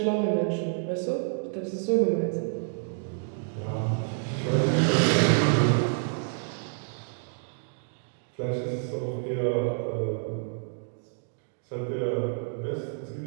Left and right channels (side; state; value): left; silent; digital silence